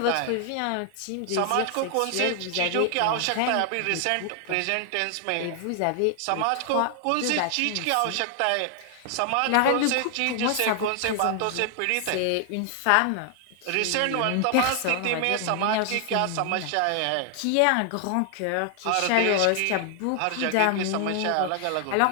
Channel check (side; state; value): both; different; correlation 0.00